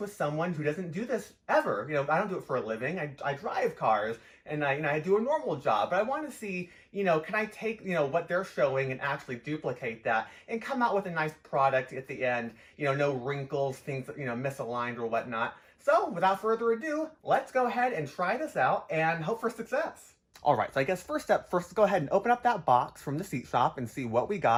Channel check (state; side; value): identical; both; correlation 1.00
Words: someone who doesn't do this ever. I don't do it for a living. I drive cars and I do a normal job, but I want to see, can I take, what they're showing and actually duplicate that and come out with a nice product at the end, no wrinkles, things, misaligned or whatnot. So without further ado, let's go ahead and try this out and hope for success. All right, so I guess first, let's go ahead and open up that box from the seat shop and see what we